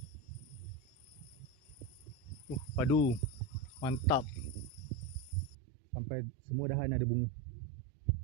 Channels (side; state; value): left; drops out; at 5.6 s